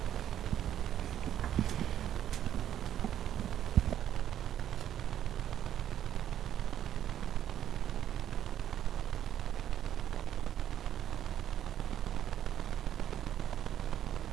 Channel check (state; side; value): quieter; left; 10.8 dB